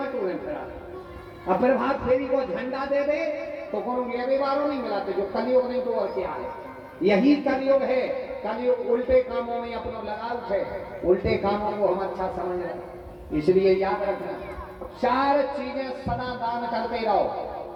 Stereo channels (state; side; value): identical; both; correlation 1.00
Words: फिरा। अब फिर भाग फेरी को झंडा दे दे तो कोनो लेवे वालों नहीं मिलाते, जो कलयुग नहीं तो और क्या है। यही कलयुग है, कलयुग उल्टे कामों में अपना लगाव है, उल्टे कामों को हम अच्छा समझ रहे। इसलिए याद रखना, 4 चीजें सदा दान करते रहो।